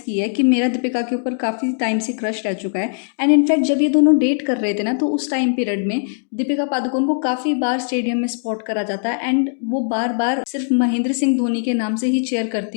है कि मेरा दीपिका के ऊपर काफ़ी टाइम से क्रश रह चुका है। एंड इनफैक्ट जब ये दोनों डेट कर रहे थे ना, तो उस टाइम पीरियड में दीपिका पादुकोण को काफ़ी बार स्टेडियम में स्पॉट करा जाता है एंड वो बार बार सिर्फ महेंद्र सिंह धोनी के नाम से ही चेयर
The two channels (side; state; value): right; silent; digital silence